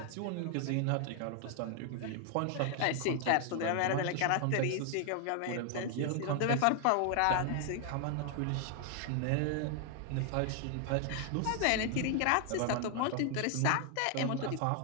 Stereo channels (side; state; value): both; different; correlation 0.00